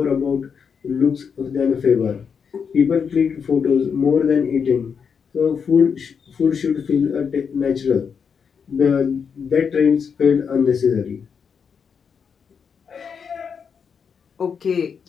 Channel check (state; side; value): quieter; right; 6.5 dB